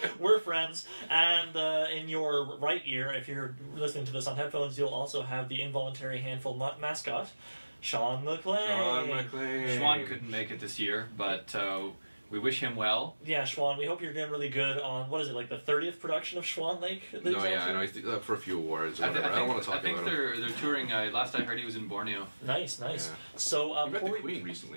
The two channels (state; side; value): inverted; both; correlation -1.00